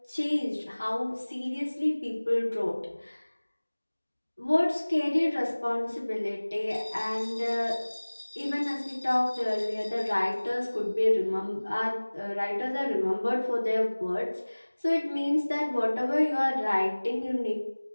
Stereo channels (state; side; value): inverted; both; correlation -1.00